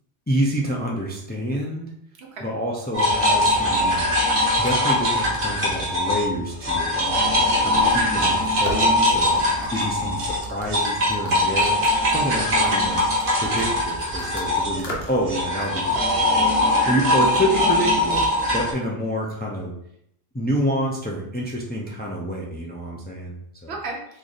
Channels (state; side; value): normal; both; correlation 0.07